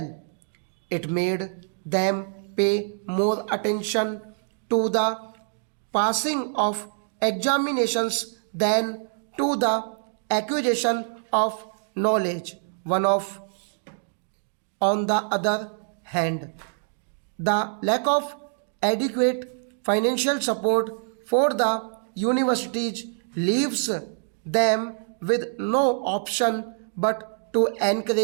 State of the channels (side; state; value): left; silent; digital silence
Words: It made them pay more attention to the passing of examinations than to the acquisition of knowledge. On the other hand, the lack of adequate financial support for the universities leaves them with no option but to